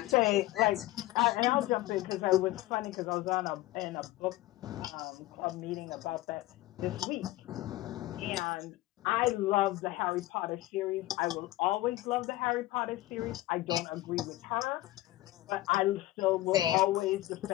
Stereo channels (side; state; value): right; quieter; 17.1 dB